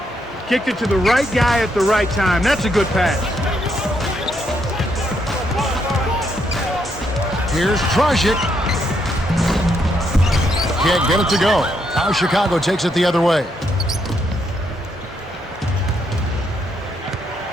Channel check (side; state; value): both; normal; correlation 0.76